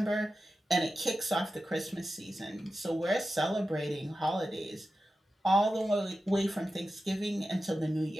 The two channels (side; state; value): both; normal; correlation 0.92